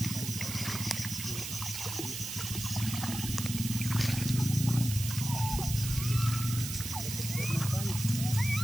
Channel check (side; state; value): right; noise; hiss, 6 dB below the sound